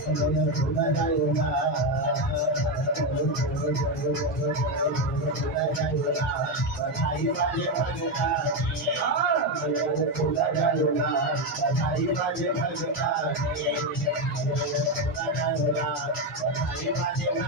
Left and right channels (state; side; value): normal; both; correlation 0.09